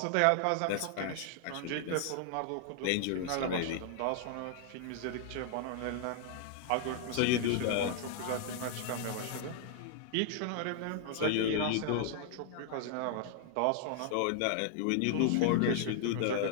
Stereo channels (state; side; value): different; both; correlation -0.01